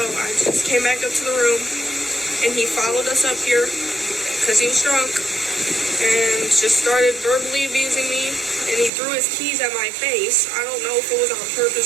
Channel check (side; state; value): left; drops out; at 8.9 s